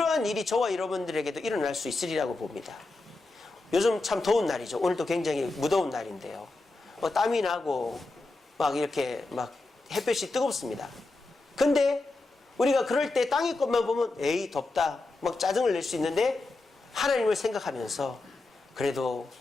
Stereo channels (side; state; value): right; quieter; 3.2 dB